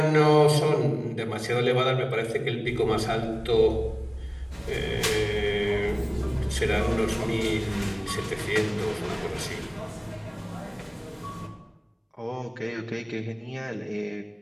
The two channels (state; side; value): identical; both; correlation 1.00